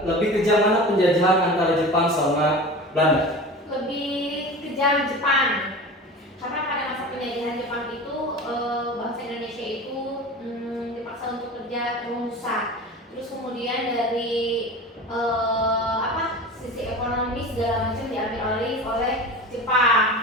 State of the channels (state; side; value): normal; both; correlation 0.33